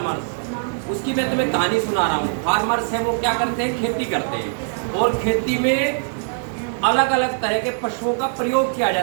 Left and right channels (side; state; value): left; silent; 56 dB below the other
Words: उसकी मैं तुम्हें कहानी सुना रहा हूँ। फार्मर्स है वो क्या करते हैं? खेती करते हैं। और खेती में अलग अलग तरह के पशुओं का प्रयोग किया